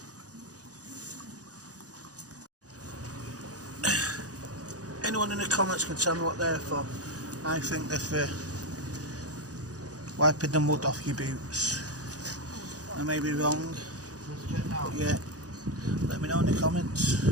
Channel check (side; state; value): left; late; 0.67 ms